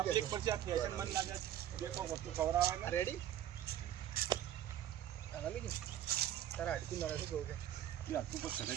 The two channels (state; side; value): quieter; left; 11.3 dB